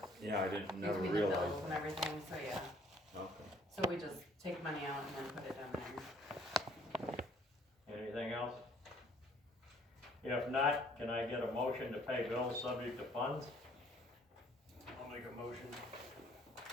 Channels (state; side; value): normal; both; correlation 0.60